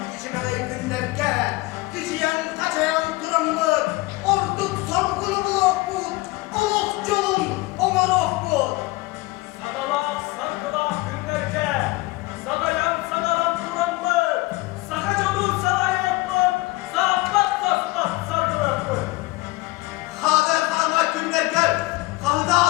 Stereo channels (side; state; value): right; quieter; 21.2 dB